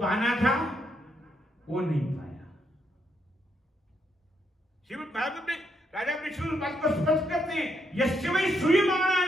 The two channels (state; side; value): normal; both; correlation 0.77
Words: था वो नहीं पाया। श्रीमद् भागवत में राजा विष्णु बात को स्पष्ट करते हैं, यस्य वै